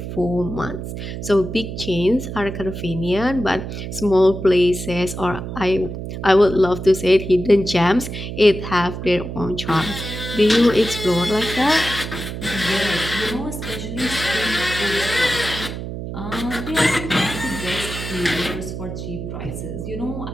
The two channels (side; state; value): right; noise; hum, 7 dB below the sound